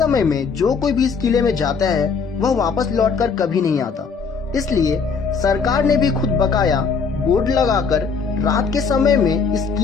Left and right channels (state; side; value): quieter; right; 5.3 dB